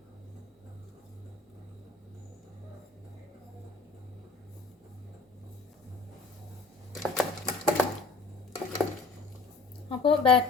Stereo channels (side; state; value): right; quieter; 3.9 dB